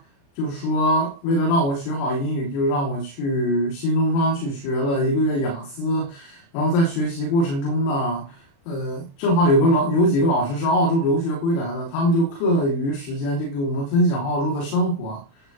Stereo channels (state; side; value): late; right; 36 ms